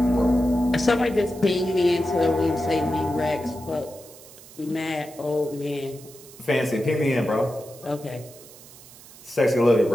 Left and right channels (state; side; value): noise; right; hiss, 20 dB below the sound